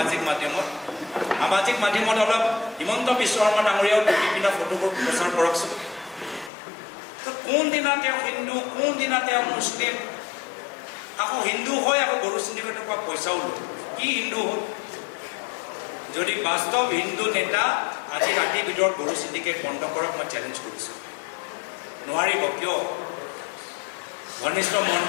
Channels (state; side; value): drops out; right; at 6.5 s